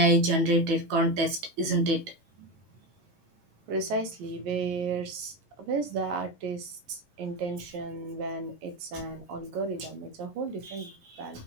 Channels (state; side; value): late; left; 9.0 ms